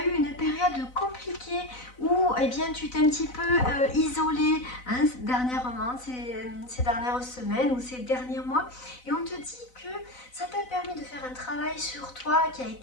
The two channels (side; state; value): right; late; 4.0 ms